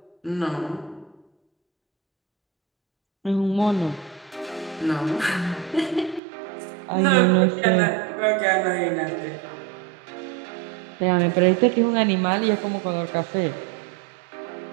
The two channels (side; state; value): left; drops out; at 6.2 s